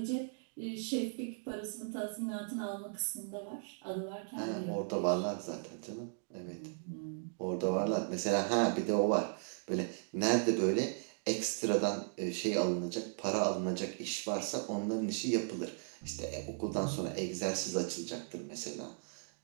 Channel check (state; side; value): silent; left; digital silence